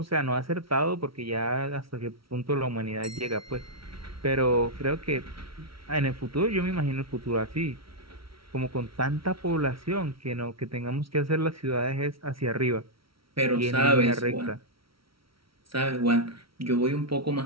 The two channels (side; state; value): left; late; 0.75 ms